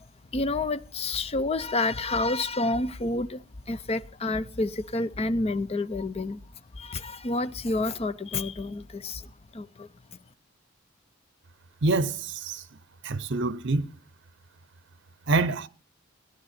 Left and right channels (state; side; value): normal; both; correlation 0.38